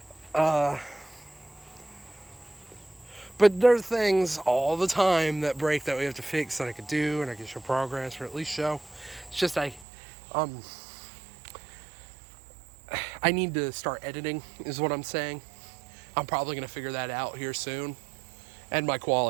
But there's things all the time that break that we have to fix that I could do, and I can show progress, or at least show. It's just I need to start editing, is what I'm saying. I'm probably going to figure that out here soon. And my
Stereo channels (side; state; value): left; drops out; at 9.9 s